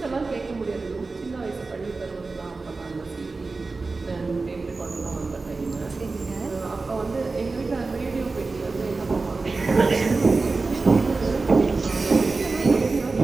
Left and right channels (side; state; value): left; quieter; 3.8 dB